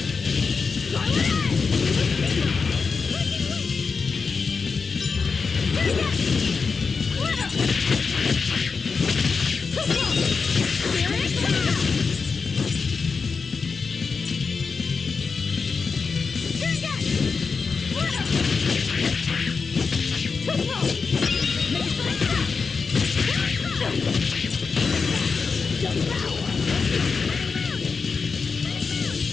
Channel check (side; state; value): right; quieter; 5.0 dB